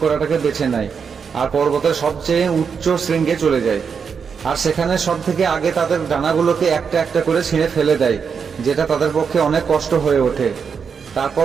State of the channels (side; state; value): left; quieter; 6.2 dB